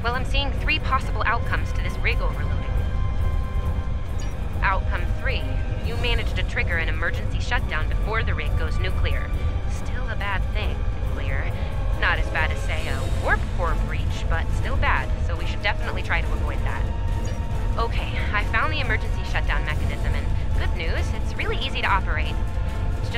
Well, I'm seeing 3 possible outcomes to this rig overloading. Outcome 3. You managed to trigger an emergency shutdown before the rig goes nuclear. Still a bad thing, nuclear. Not as bad as, say, a warp core breach, but still bad, so we should definitely try to avoid that. Okay, I found the emergency shutdown mechanism, and good news, it's really easy to operate. It's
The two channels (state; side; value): identical; both; correlation 1.00